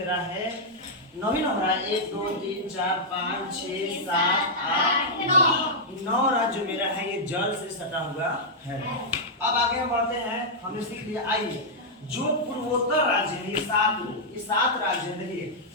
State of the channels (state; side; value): normal; both; correlation -0.07